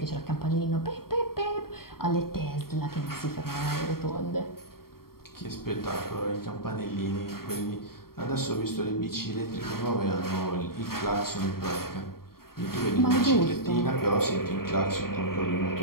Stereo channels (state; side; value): late; right; 0.93 ms